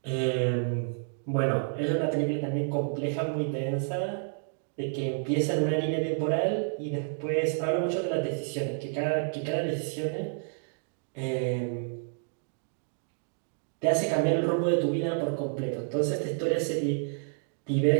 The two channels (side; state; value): left; silent; digital silence